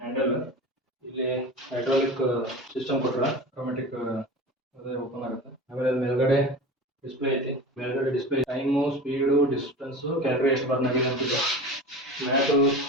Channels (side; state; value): both; normal; correlation 0.32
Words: ಹ್ಯಾಂಡಲ್. ಇಲ್ಲಿ ಹೈಡ್ರಾಲಿಕ್ ಸಿಸ್ಟಮ್ ಕೊಟ್ಟಾರ, ಆಟೋಮೆಟಿಕ್ ಅದೇ ಓಪನ್ ಆಗುತ್ತೆ. ಆಮೇಲೆ ಮೇಲ್ಗಡೆ ಡಿಸ್ಪ್ಲೇ ಐತಿ. ಮೇಲ್ಗಡೆ display time, speed, distance, calorie ಎಷ್ಟು ಬರ್ನ್ ಆಗಿದೆ ಅಂತಿದೆ. ಮ್ಯಾಟು